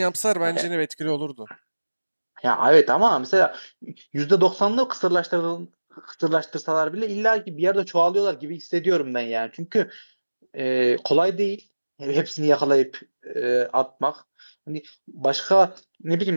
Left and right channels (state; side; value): inverted; both; correlation -1.00